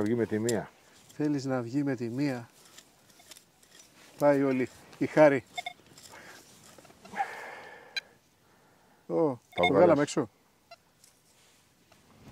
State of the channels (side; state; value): both; identical; correlation 1.00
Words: με τη μία. Θέλεις να βγει με τη μία. Πάει όλη η χάρη. Το βγάλαμε έξω.